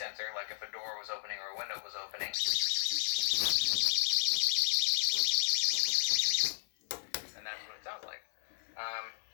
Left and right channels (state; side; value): silent; right; 55 dB below the other